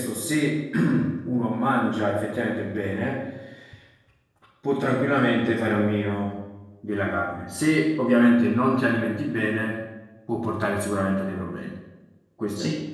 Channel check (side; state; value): both; identical; correlation 1.00